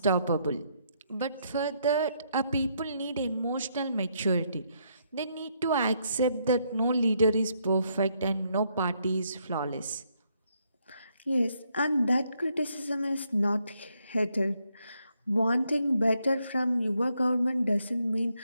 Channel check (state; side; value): inverted; both; correlation -0.74